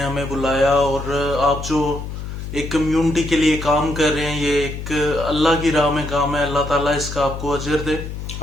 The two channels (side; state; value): left; noise; hum, 8 dB below the sound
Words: بلایا، اور آپ جو ایک کمیونٹی کے لیے کام کر رہے ہیں، یہ ایک اللہ کی راہ میں کام ہے. اللہ تعالیٰ اس کا آپ کو اجر دے.